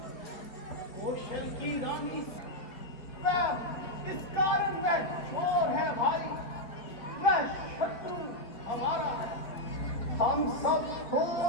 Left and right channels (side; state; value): right; late; 4.5 ms